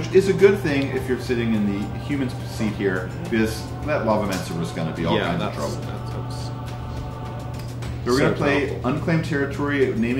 is a good thing if you're sitting in the human seat here, because that Lavamancer was going to be all kinds of trouble. So we're going to play Unclaimed Territory,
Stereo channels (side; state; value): both; identical; correlation 1.00